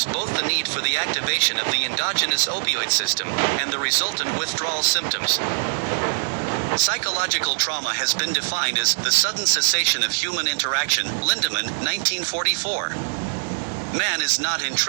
both the need for the activation of the endogenous opioid system and the resultant withdrawal symptoms. Psychological trauma has been defined as the sudden cessation of human interaction, Lindemann, 1944. Man is not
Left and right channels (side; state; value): left; silent; digital silence